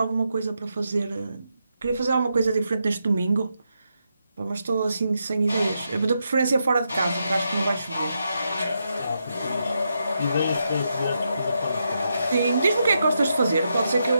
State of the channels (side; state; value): both; inverted; correlation -0.83